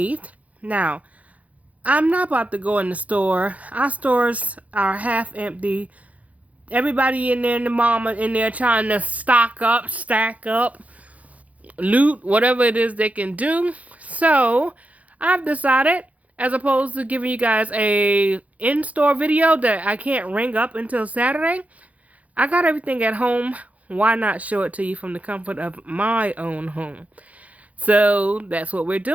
Now, I'm not about to go in the store. Our stores are half empty. Everybody in there and the mama in there trying to stock up, stack up, loot, whatever it is they can do. So, I've decided, as opposed to giving you guys a in-store video that I can't ring up until Saturday, I got everything at home. Why not show it to you from the comfort of my own home? So, that's what we're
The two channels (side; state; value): left; late; 0.069 ms